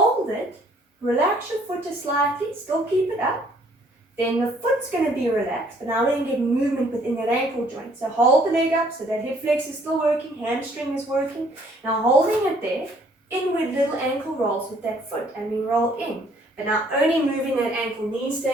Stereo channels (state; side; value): normal; both; correlation 0.62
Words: it, relax your foot just slightly, still keep it up. Then the foot's going to be relaxed, but now we're going to get movement within that ankle joint. So hold the leg up so that hip flex is still working, hamstring is working. Now holding it there, inward little ankle rolls with that foot, and we roll in. But now only moving that ankle, knees